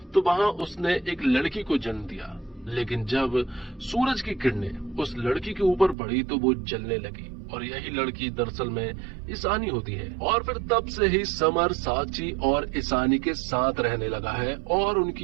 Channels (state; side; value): drops out; left; at 6.0 s